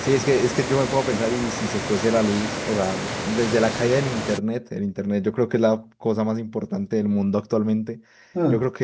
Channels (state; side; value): identical; both; correlation 1.00